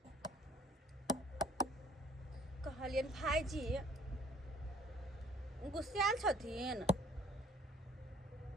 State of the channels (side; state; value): both; normal; correlation 0.57